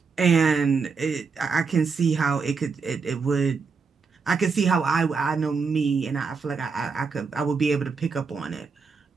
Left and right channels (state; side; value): quieter; left; 5.1 dB